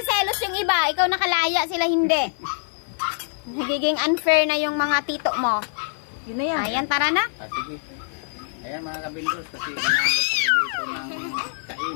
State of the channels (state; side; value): silent; right; 56 dB below the other